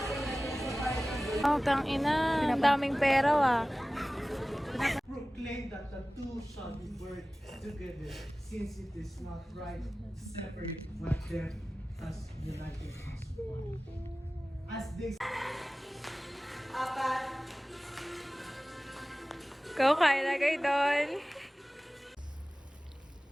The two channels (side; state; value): both; normal; correlation 0.97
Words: Oh, tang ina. Ang daming pera, ah. Proclaim that the two shall be burned together, since it is not right to separate what them as united as one. As they Go, kain na kayo doon.